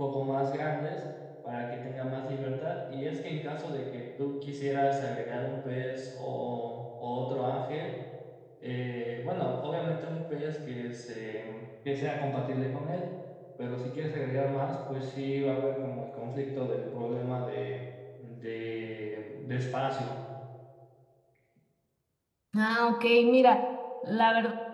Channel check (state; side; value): identical; both; correlation 1.00